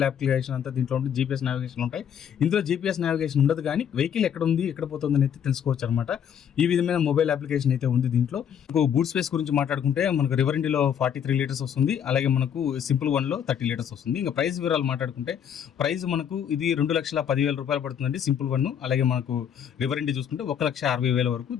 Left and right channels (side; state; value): right; quieter; 8.6 dB